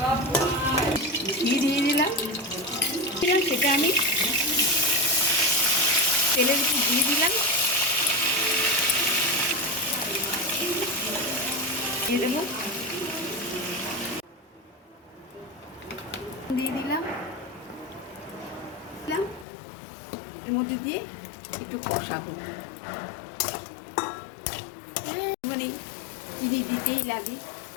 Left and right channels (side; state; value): right; drops out; at 19.5 s